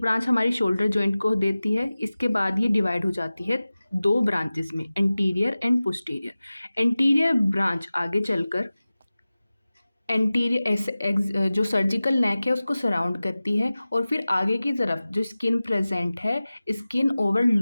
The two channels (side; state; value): both; inverted; correlation -0.97